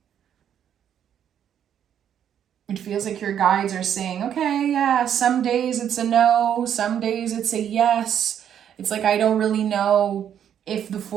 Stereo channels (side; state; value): left; quieter; 9.3 dB